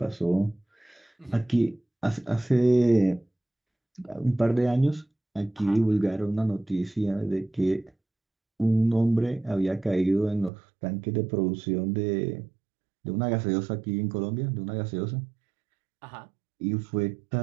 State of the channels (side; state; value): left; drops out; at 10.5 s